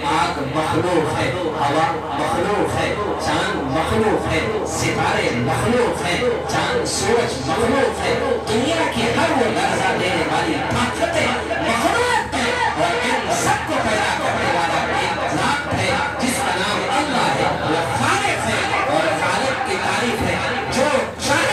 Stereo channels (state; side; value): identical; both; correlation 1.00